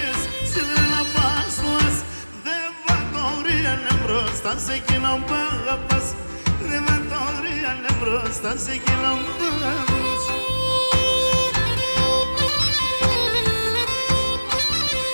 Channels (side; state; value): both; inverted; correlation -1.00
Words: σιδρέλα πας φως. Δεν βατόριανε μπροστά σε εκείνον που αγαπάς. Δεν βατόριανε μπροστά σε εκείνον που αγαπάς.